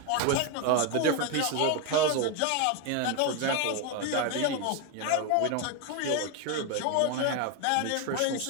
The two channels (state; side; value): different; both; correlation 0.02